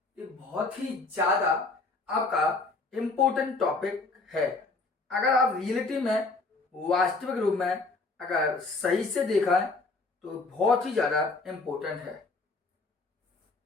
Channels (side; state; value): right; quieter; 3.6 dB